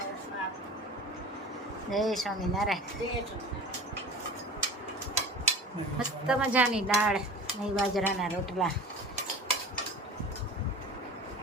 જય સ્વામિનારાયણ. મસ્ત મજાની દાળ નહીં બાજરાના રોટલા.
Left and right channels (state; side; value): normal; both; correlation 0.37